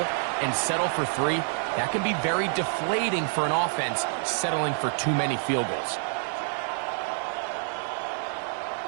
and settle for 3, that can be very deflating for an offense settling for too many field goals.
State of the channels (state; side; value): silent; left; 60 dB below the other